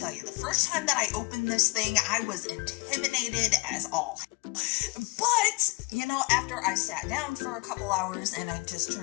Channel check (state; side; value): quieter; right; 28.1 dB